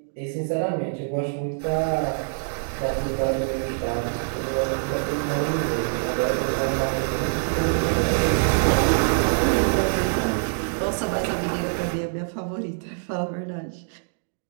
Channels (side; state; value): left; silent; digital silence